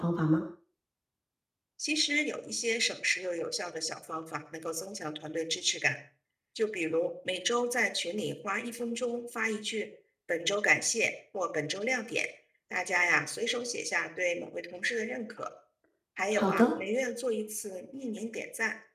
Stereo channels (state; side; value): identical; both; correlation 1.00